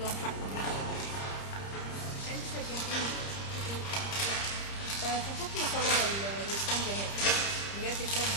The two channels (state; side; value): late; right; 30 ms